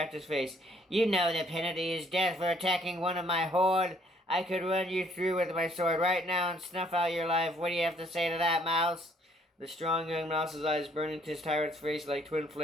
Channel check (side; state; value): both; normal; correlation 0.63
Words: face. "You know the penalty is death for attacking one of my horde. I could run you through with my sword right now and snuff out your life. What do you have to say to that, mouse?" The strong young mouse's eyes burned into his tyrant's face like twin